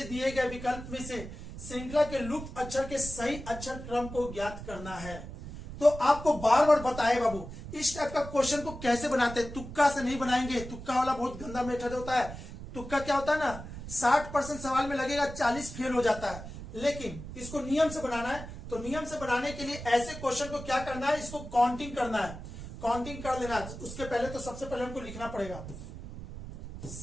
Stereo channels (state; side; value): noise; right; rumble, 11 dB below the sound